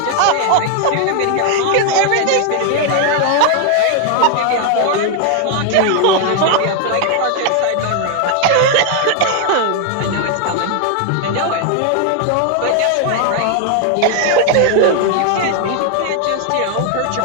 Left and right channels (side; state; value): both; different; correlation 0.00